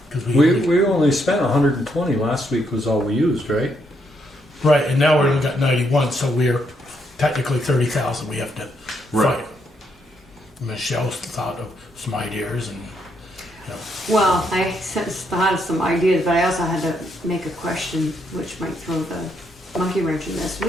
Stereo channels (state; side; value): normal; both; correlation 0.76